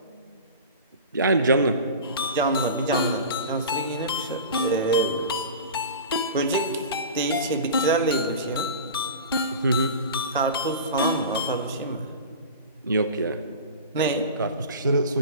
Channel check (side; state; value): both; inverted; correlation -0.34